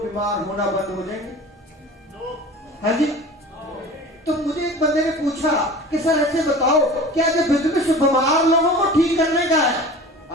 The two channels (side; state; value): both; normal; correlation 0.38